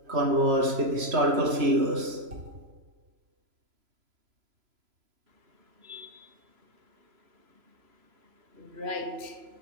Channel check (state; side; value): late; left; 3.0 ms